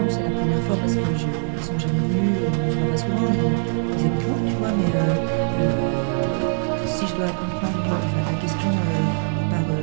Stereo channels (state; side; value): silent; left; digital silence